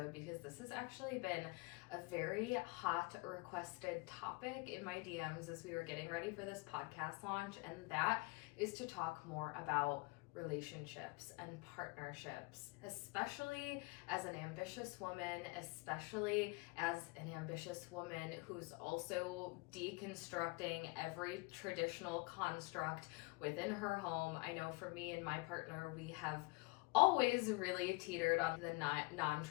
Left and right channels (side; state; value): right; quieter; 26.6 dB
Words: because this has actually been a very hot requested topic in my DMs as we were getting ready for this podcast launch, and that is to talk more about relationships and partnerships, especially as an ambitious woman, who's also deconstructing every traditional construct within her home. I know for me and my partner, we have always really teetered on the